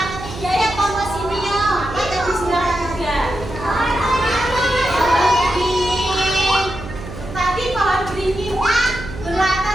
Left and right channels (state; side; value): noise; right; hum, 11 dB below the sound